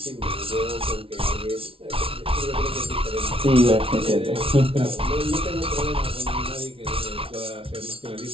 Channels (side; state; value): left; late; 0.26 ms